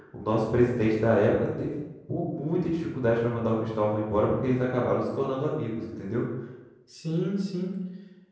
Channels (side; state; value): both; identical; correlation 1.00